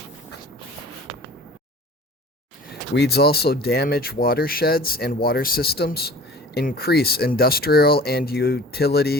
Weeds also damage watersheds and water systems, increase industrial and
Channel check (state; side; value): normal; both; correlation 0.44